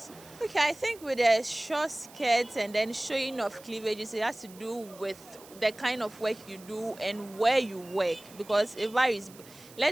Okay, I think with the short skirts and then showing of cleavages, it has to do with the kind of work you do and where you work, because it varies.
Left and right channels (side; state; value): right; noise; hiss, 21 dB below the sound